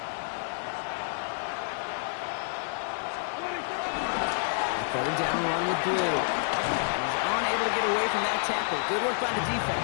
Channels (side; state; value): right; silent; digital silence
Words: 3rd down run with Blue. He's unable to get away from that tackle. Good work by the defense.